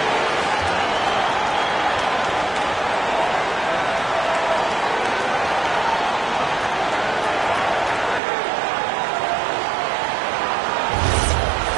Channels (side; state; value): left; drops out; at 8.2 s